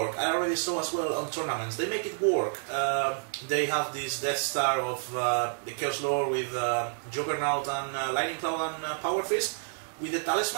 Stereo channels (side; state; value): left; silent; 58 dB below the other